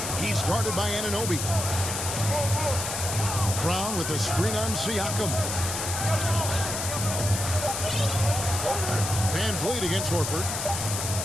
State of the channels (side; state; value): left; noise; hiss, 3 dB below the sound